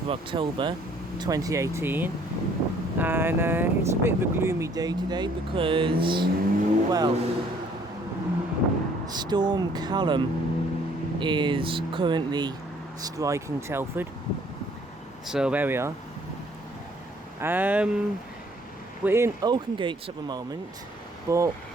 of October 2018 and it's a bit of a gloomy day today because, well, Storm Callum is currently striking Telford. So there we are. We're in Oakengates at the moment, but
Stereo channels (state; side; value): normal; both; correlation 0.60